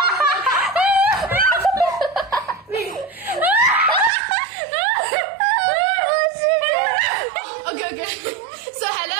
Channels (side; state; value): left; drops out; at 4.1 s